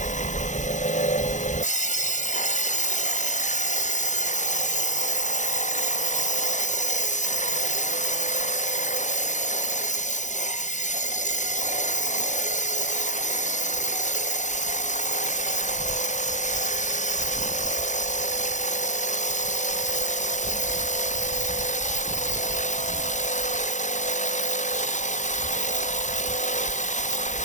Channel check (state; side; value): late; right; 0.35 ms